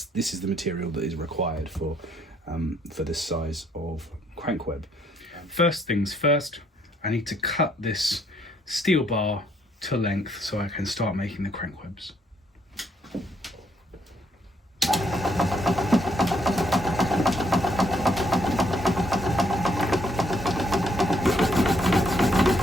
is the material that is required for this size of crank web. First things first, I need to cut this steel bar to length so I can start making the crank webs.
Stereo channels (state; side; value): normal; both; correlation 0.70